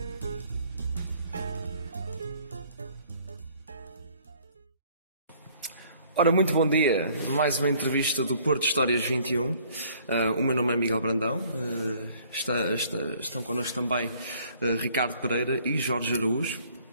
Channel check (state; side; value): inverted; both; correlation -0.59